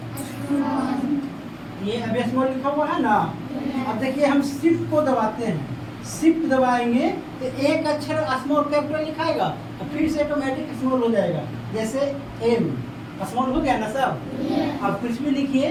ये अभी स्मॉल लिखा हुआ है ना। अब देखिए हम शिफ्ट को दबाते हैं, शिफ्ट दबाएंगे तो एक अक्षर स्मॉल कैपिटल लिखाएगा और फिर से ऑटोमेटिक स्मॉल हो जाएगा। जैसे M स्मॉल हो गया ना सब। अब कुछ भी लिखिए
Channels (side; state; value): both; identical; correlation 1.00